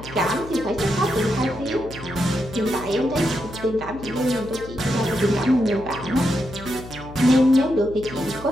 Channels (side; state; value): left; noise; hum, 15 dB below the sound